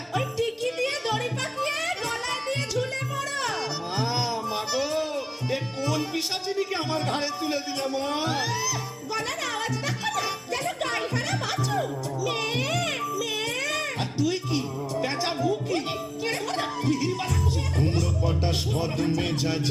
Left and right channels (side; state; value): both; identical; correlation 1.00